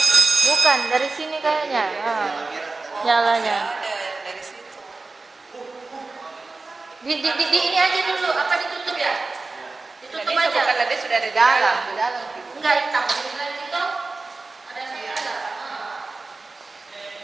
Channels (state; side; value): quieter; left; 3.6 dB